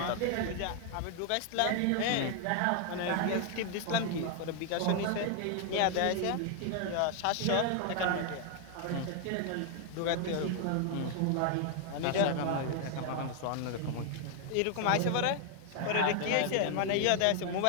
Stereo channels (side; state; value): both; different; correlation 0.00